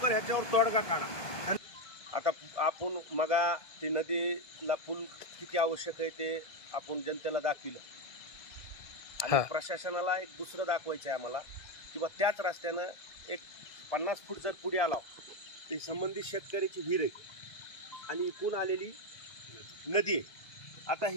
ह्याच्यावर तोडगा काढा। आता आपण मगा ती नदीला पूल किती आवश्यक आहे ते आपण जनतेला दाखविलं आणि प्रशासनाला एक दुसरं दाखवायचं आहे आम्हाला किंवा त्याच रस्त्यानं एक 50 फूट जर पुढे आला तर संबंधित शेतकऱ्याची विहीर आहे आणि इकून आलेली नदी आहे। आता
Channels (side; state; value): right; late; 1.6 ms